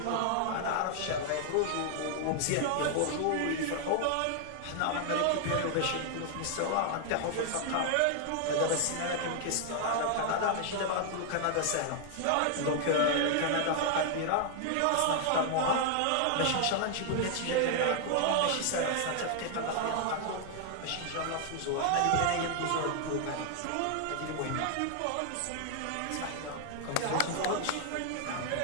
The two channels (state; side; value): different; both; correlation 0.00